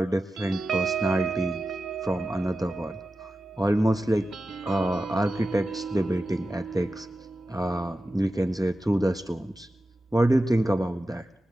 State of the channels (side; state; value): both; normal; correlation 0.92